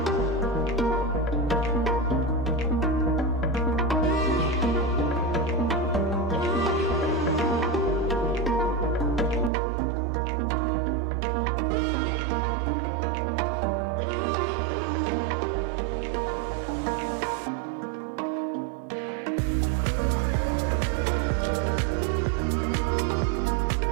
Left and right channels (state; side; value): drops out; left; at 9.5 s